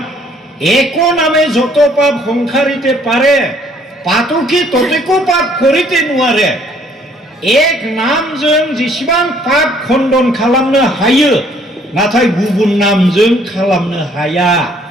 একো নামে যত পাপ সংসাৰিতে পাৰে পাতকি ততেকো পাপ কৰিতে নোৱাৰে এক नामजों जेसेबां पाप खण्डन खालामनो हायो नाथाय गुबुन नामजों खालामनो हाया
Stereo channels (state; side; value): normal; both; correlation 0.62